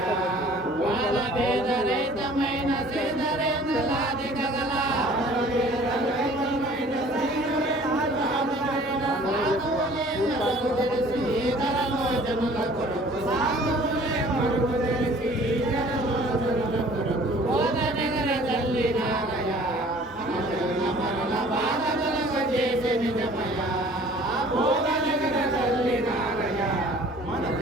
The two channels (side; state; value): both; normal; correlation 0.51